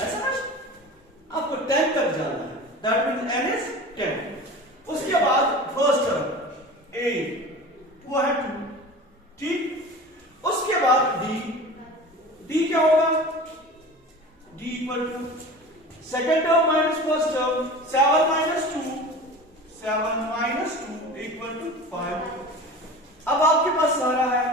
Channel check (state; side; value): normal; both; correlation 0.36